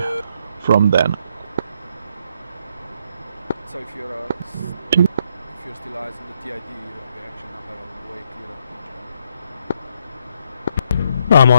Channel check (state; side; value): inverted; both; correlation -0.73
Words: from then. so if you're still eyes on the TID, you actually now have a way clearer picture. I'm